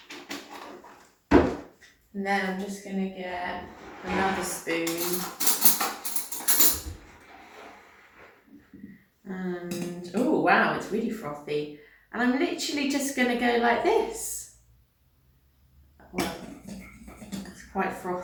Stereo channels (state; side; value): identical; both; correlation 1.00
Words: And then I'm just going to get another spoon. And, oh wow, it's really frothy. And I'm literally just going to go like this. Well, it's quite